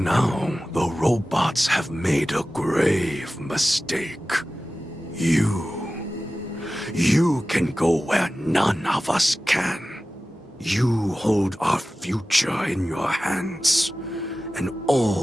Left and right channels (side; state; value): both; normal; correlation 0.95